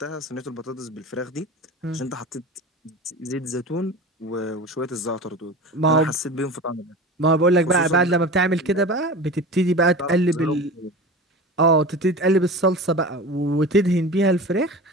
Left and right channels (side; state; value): both; normal; correlation 0.33